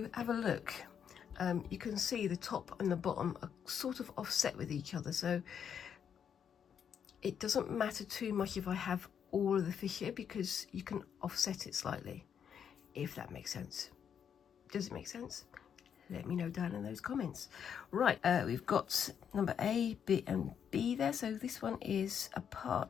have a look, you can see the top and the bottom are sort of offset with each other. So it doesn't matter too much if I have all of the fish here, because you can offset it slightly, if that makes sense. Does it make sense? Let me know down in those comments. Right, we've got number A, B and B there. So this one is a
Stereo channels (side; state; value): right; quieter; 8.0 dB